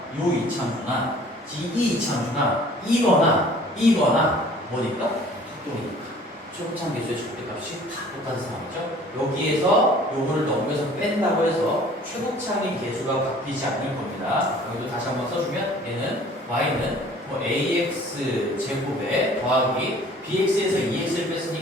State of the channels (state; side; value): normal; both; correlation 0.51